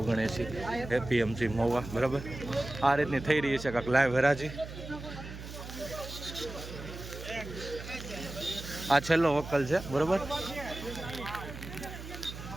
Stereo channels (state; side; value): noise; right; hum, 11 dB below the sound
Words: એપીએમસી મહુવા બરાબર આ રીતની થઈ રહી છે કાંક લાઈવ હરાજી આ છેલ્લો વકલ છે બરાબર